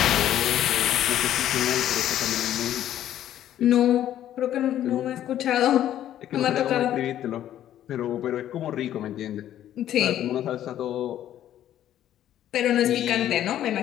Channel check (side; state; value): right; quieter; 11.7 dB